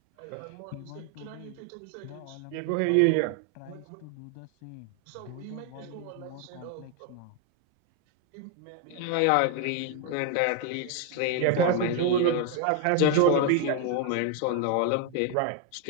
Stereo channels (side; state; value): both; different; correlation 0.01